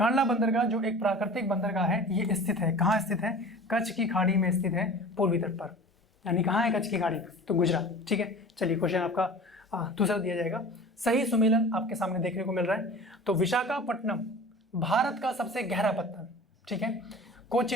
बंदरगाह जो एक प्राकृतिक बंदरगाह है, ये स्थित है, कहाँ स्थित है, कच्छ की खाड़ी में स्थित है, पूर्वी तट पर। यानी कहाँ है कच्छ की खाड़ी, तो गुजरात, ठीक है। चलिए क्वेश्चन आपका दूसरा दिया जाएगा। सही सुमेलन आपके सामने देखने को मिल रहा है, तो विशाखापट्टनम भारत का सबसे गहरा पत्तन, ठीक है।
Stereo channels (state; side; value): normal; both; correlation 0.39